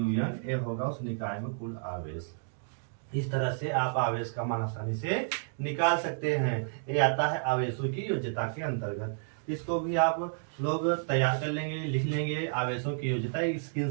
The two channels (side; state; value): left; silent; digital silence